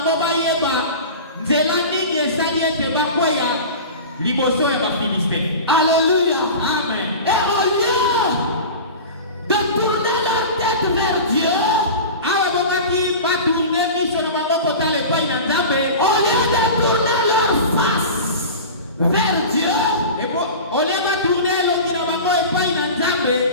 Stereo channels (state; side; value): inverted; both; correlation -0.32